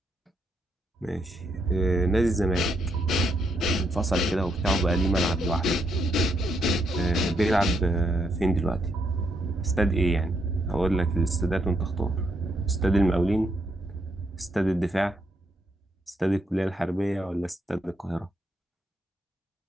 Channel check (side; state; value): both; normal; correlation 0.77